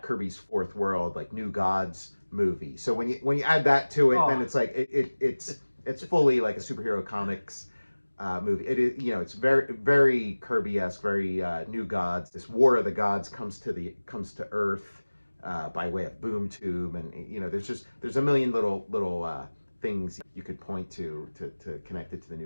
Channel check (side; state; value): both; inverted; correlation -1.00